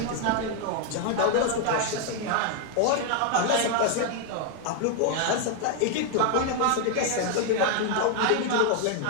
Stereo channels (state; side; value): different; both; correlation 0.01